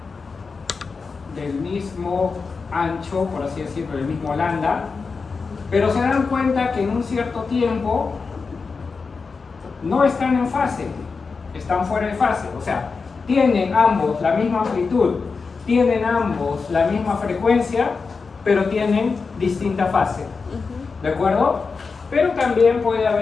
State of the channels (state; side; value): quieter; right; 4.7 dB